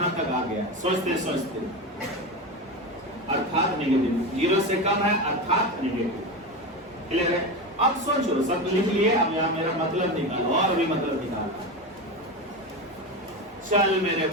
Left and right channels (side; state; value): both; normal; correlation 0.20